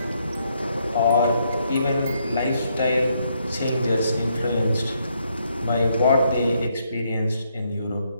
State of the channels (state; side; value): inverted; both; correlation -0.75